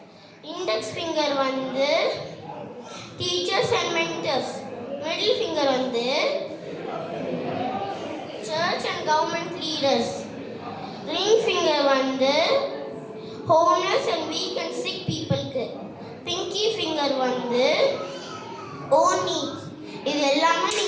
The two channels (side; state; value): both; identical; correlation 1.00